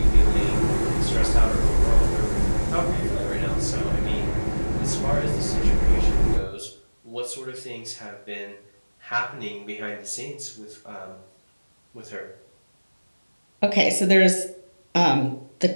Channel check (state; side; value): inverted; both; correlation -1.00